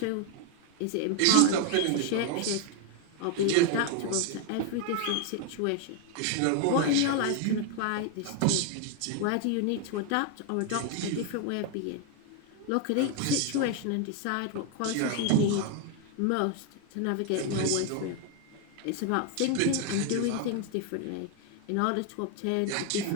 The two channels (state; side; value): different; both; correlation 0.01